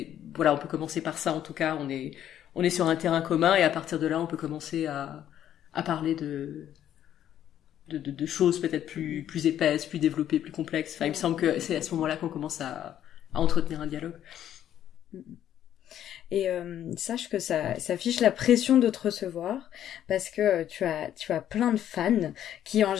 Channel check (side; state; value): right; quieter; 10.9 dB